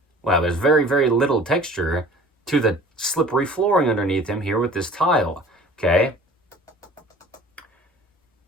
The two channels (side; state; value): both; normal; correlation 0.46